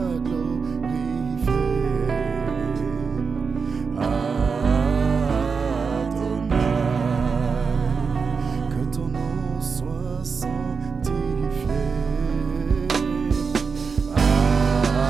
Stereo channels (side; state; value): left; quieter; 5.3 dB